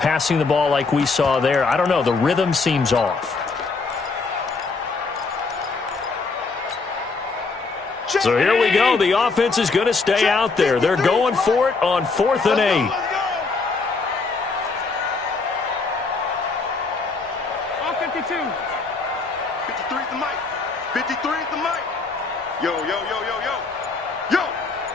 the ball like we saw there. I don't know. The rhythm seems off. So here we go. The offense is going to stay out there. They're going for it on 4th and 8. On 52. 53 is the mic. 53 is the mic. Yo, yo, yo, yo, yo. Yo.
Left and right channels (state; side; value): quieter; right; 4.2 dB